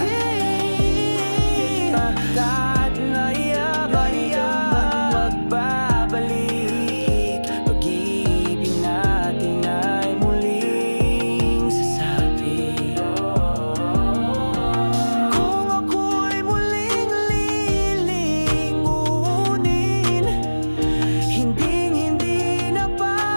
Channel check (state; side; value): inverted; both; correlation -1.00